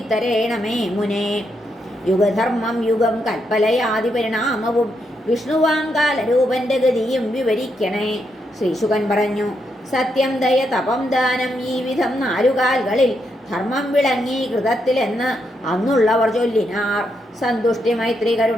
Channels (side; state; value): both; normal; correlation 0.80